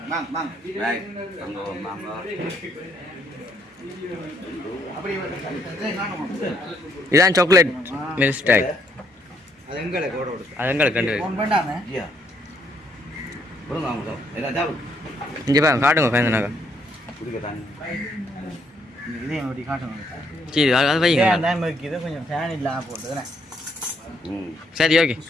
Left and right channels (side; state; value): both; normal; correlation 0.71